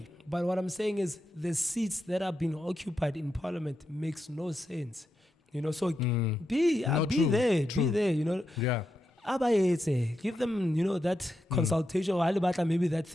But what I'm saying is, the seats that are being occupied in parliament makes no sense. You know, so be true, there, true. be there. You know. Yeah. Give them, that consultation, or maybe that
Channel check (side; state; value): both; normal; correlation 0.86